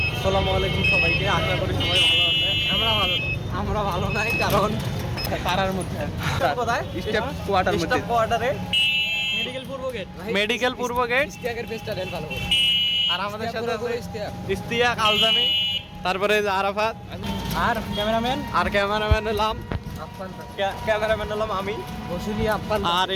আসসালামু আলাইকুম সবাইকে, আশা করি সবাই ভালো আছে। আমরা ভালো নাই, কারণ পাড়ার মধ্যে কোথায় স্টেপ কোয়ার্টারে মেডিকেল পূর্ব গেট, মেডিকেল পূর্ব গেট। ইস্তিয়াকের পেজটা দেন ভালো করে। আর আমাদের সাথে আছে ইস্তিয়াক ইস্তিয়াক, আলজামি, তারপরে যে আরাফাত, আর ক্যামেরাম্যান আর ক্যামেরাম্যান হলাম আপ্পান আমি। বসুলি আপ্পান। আর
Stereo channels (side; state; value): both; identical; correlation 1.00